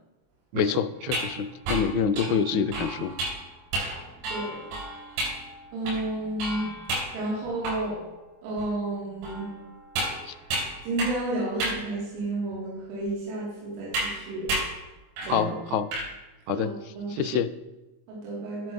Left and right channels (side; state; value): left; late; 24 ms